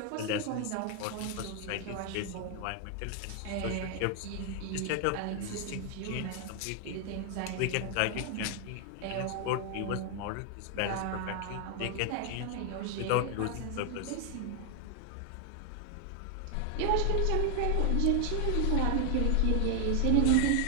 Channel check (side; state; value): both; different; correlation 0.00